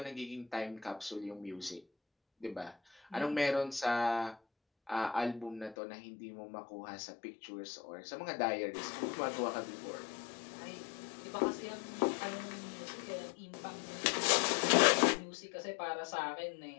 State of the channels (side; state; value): right; drops out; at 5.8 s